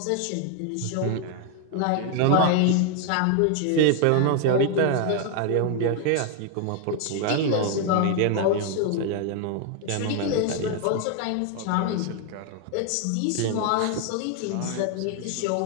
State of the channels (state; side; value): different; both; correlation 0.00